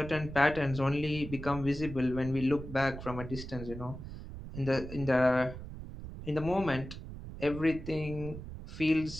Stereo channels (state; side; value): noise; right; rumble, 11 dB below the sound